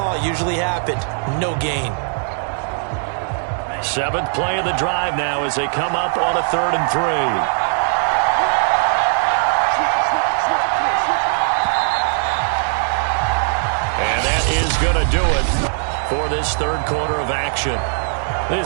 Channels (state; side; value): silent; left; 66 dB below the other